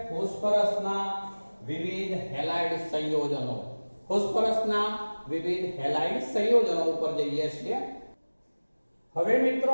ફોસ્ફરસના વિવિધ હેલાઇડ સંયોજનો. ફોસ્ફરસના વિવિધ હેલાઇડ સંયોજનો ઉપર જઈએ છીએ. હવે મિત્રો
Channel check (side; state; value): both; inverted; correlation -1.00